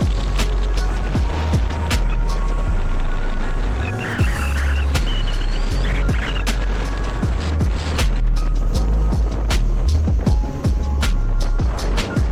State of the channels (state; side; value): identical; both; correlation 1.00